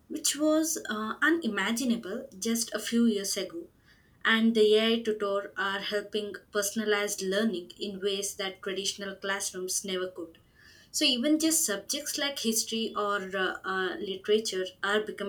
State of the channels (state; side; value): identical; both; correlation 1.00